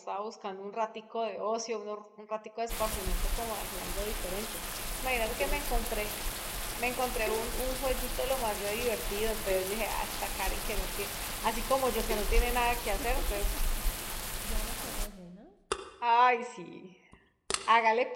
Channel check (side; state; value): both; identical; correlation 1.00